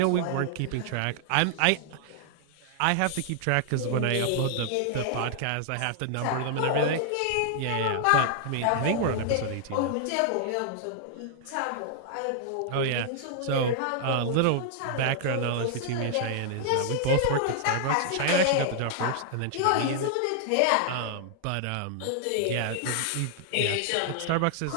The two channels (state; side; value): different; both; correlation -0.01